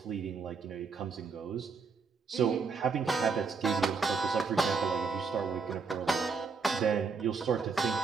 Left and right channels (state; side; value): quieter; left; 5.0 dB